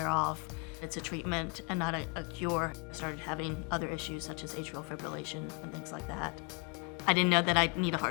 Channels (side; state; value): right; quieter; 30.0 dB